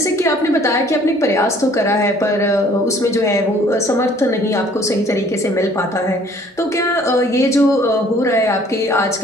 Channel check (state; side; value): normal; both; correlation 0.57